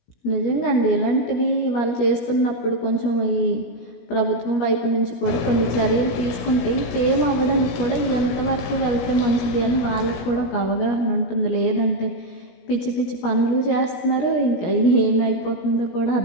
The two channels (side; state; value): right; late; 17 ms